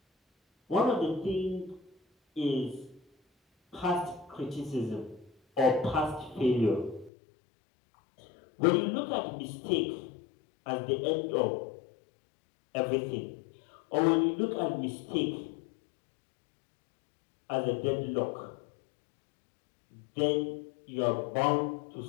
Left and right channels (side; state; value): right; drops out; at 7.1 s